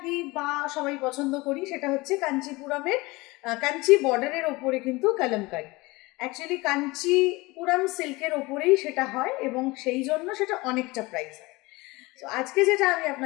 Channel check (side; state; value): right; quieter; 22.6 dB